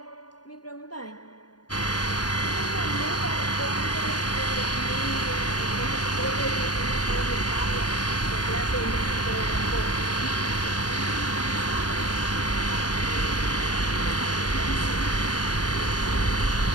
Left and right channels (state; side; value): late; right; 0.70 ms